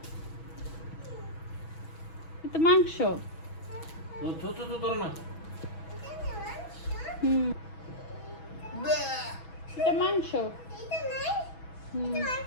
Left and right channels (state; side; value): late; right; 6.1 ms